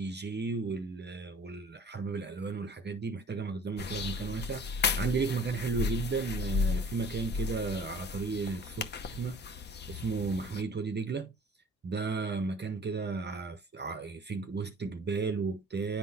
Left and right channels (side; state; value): both; normal; correlation 0.49